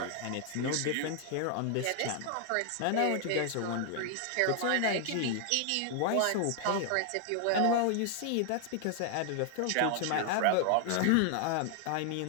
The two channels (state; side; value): different; both; correlation 0.00